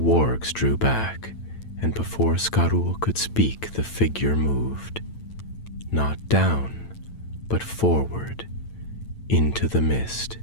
drew back, and before Skarul could speak, the figure moved, not down, but forward, into the mist,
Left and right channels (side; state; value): right; late; 9.0 ms